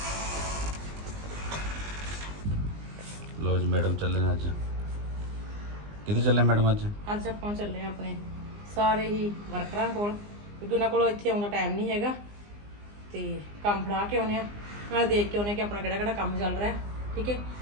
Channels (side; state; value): left; late; 20 ms